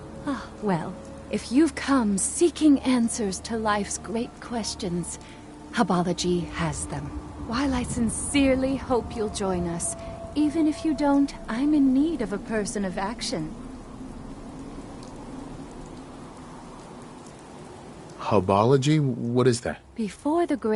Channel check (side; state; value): both; identical; correlation 1.00